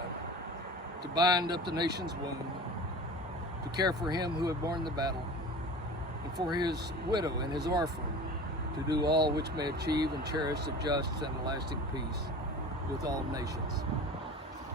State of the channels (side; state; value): both; normal; correlation 0.37